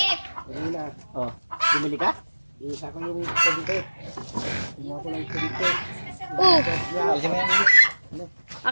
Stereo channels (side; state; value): both; inverted; correlation -1.00